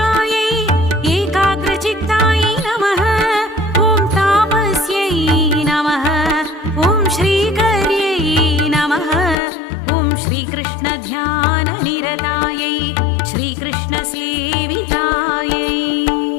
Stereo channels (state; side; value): drops out; right; at 9.3 s